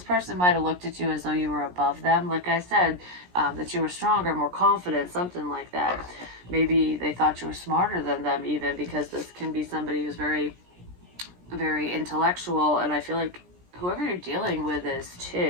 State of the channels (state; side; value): late; left; 17 ms